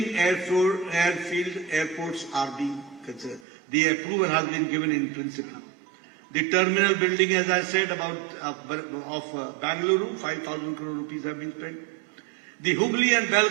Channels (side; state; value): left; drops out; at 3.5 s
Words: airfield airports are being considered. The approval has been given in principle. The terminal building, as I said, of Bangalore, 5,000 crore rupees have been spent. The Hubli and